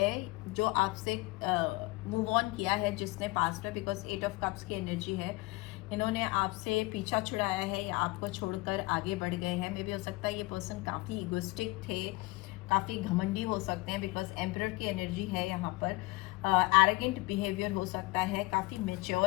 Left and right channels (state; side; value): quieter; right; 23.0 dB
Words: जो आपसे मूव ऑन किया है, जिसने पास्ट में, बिकॉज 8 ऑफ कप्स की एनर्जी है, इन्होंने आपसे पीछा छुड़ाया है या आपको छोड़कर आगे बढ़ गए हैं। मे भी हो सकता है ये पर्सन काफ़ी इगोस्टिक थे, काफ़ी घमंडी हो सकते हैं बिकॉज एम्परर की एनर्जी है यहाँ पर। एरोगेंट बिहेवियर हो सकता है, काफ़ी